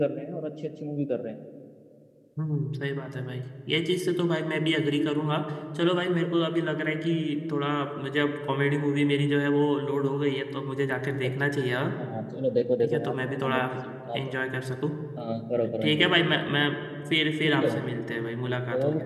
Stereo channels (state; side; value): identical; both; correlation 1.00